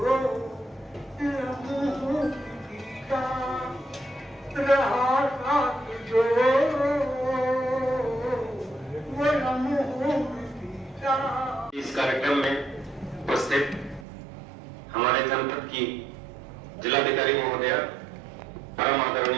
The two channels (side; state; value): left; drops out; at 14.1 s